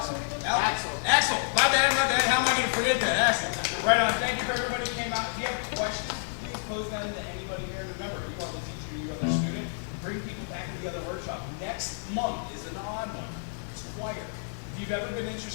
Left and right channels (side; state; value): right; silent; digital silence